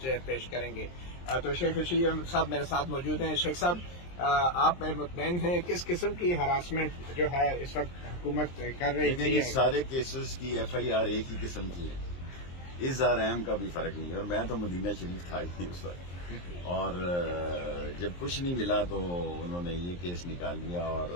پیش کریں گے۔ تو شیخ رشید احمد صاحب میرے ساتھ موجود ہیں۔ شیخ صاحب، آپ مطمئن ہیں کس قسم کی ہراسمنٹ جو ہے اس وقت حکومت کر رہی تھی؟ یہ سارے کیسز کی ایف آئی آر ایک ہی قسم کی ہے، اظہار اہم کا بھی فرق نہیں ہے، اور میں تو مدینہ شریف تھا ہی نہیں اس وقت، اور جب کچھ نہیں ملا تو انہوں نے یہ کیس نکال لیا، اور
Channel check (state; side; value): late; right; 23 ms